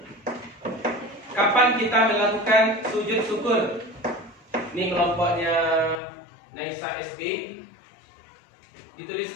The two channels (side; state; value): right; drops out; at 6.0 s